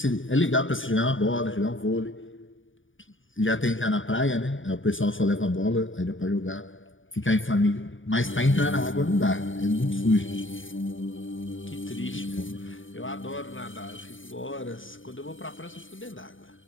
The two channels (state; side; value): late; right; 0.57 ms